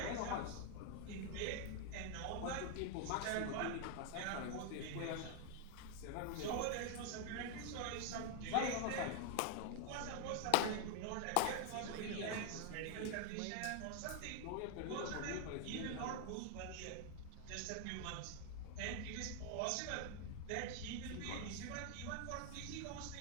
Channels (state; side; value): different; both; correlation 0.00